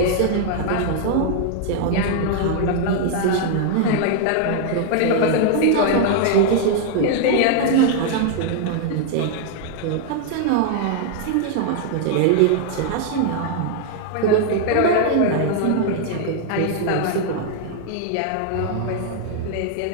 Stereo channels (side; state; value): both; different; correlation 0.00